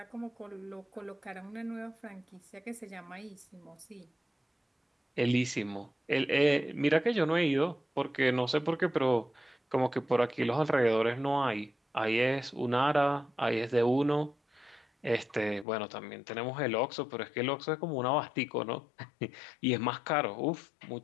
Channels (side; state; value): right; drops out; at 15.7 s